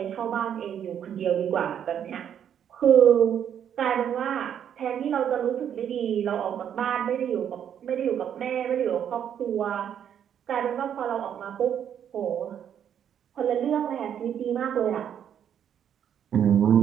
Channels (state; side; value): quieter; left; 9.2 dB